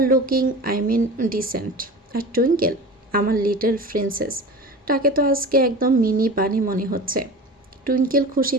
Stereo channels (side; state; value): both; normal; correlation 0.34